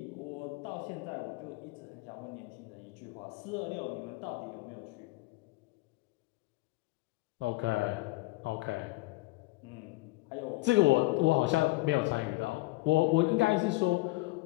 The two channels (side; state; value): right; quieter; 21.6 dB